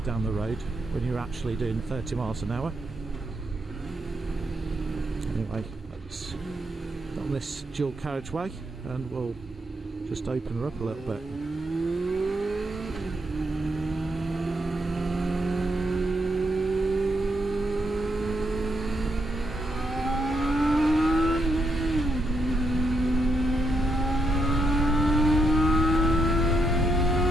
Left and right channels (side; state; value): both; normal; correlation 0.80